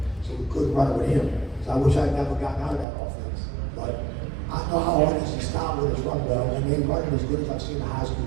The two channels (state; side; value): drops out; left; at 2.9 s